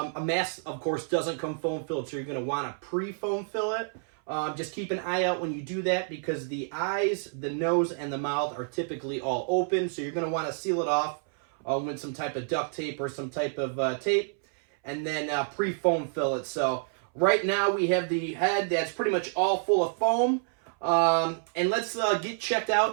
mask, of course, doesn't come foam filled, so you're going to want to pre-foam fill it. Just keep an eye out when you do that because the eyes, the nose, and the mouth are typically all open, so you're going to want to seal it off with some type of duct tape or some type of tape, and then pre-foam fill it. So right now we have the head that's pretty much all full of foam. And let's get checked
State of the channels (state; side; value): silent; left; 59 dB below the other